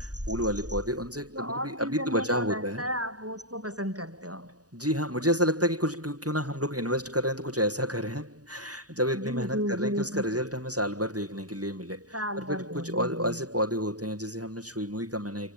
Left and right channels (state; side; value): late; left; 0.68 ms